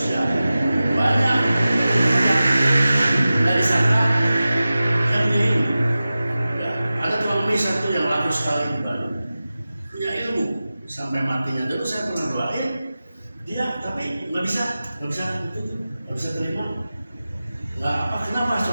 ya. Banyak dari sana yang ini. Ada tukang mie satu yang laku sekali di Bandung, punya ilmu sampai matinya. Dulu saya pernah doain dia, tapi nggak bisa terima. Kenapa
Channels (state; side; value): inverted; both; correlation -0.95